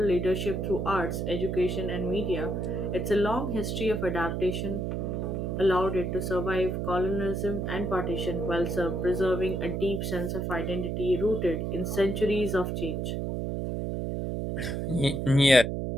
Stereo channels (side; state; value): right; noise; hum, 2 dB below the sound